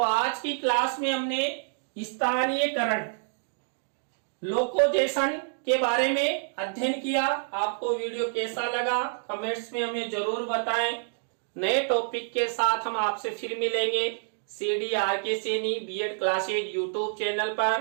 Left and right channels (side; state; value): left; silent; digital silence